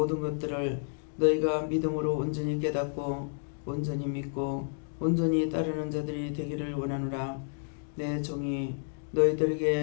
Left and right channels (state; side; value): silent; right; digital silence